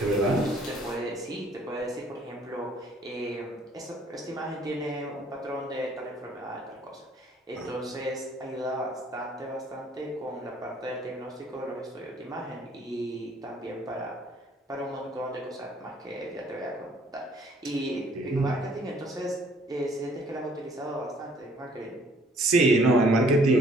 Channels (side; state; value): both; normal; correlation 0.60